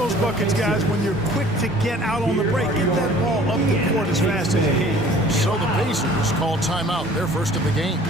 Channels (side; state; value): both; normal; correlation 0.50